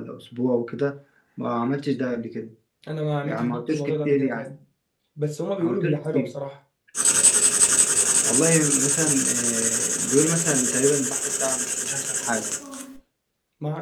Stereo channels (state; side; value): identical; both; correlation 1.00